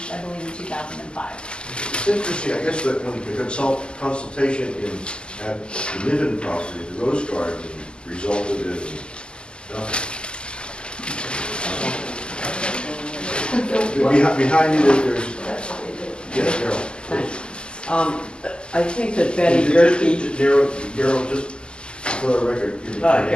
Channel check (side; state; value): right; late; 0.049 ms